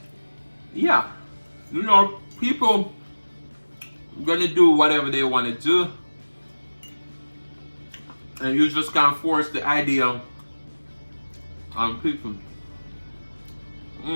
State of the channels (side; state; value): both; inverted; correlation -1.00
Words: yeah, you know, people gonna do whatever they want to do, and you just can't force the idea on people.